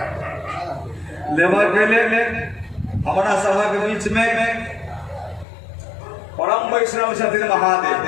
लेबर के ले हमारा सभा के बीच में परम वैष्णव छथिन महादेव।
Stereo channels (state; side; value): drops out; right; at 5.5 s